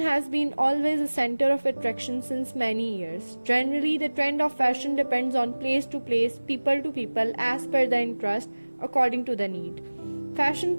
been always a center of attraction since many years. Generally, the trend of fashion depends on place to place, people to people, as per the interest, according to the need. Fashion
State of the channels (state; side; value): inverted; both; correlation -1.00